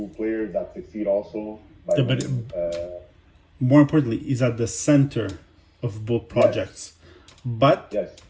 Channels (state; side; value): identical; both; correlation 1.00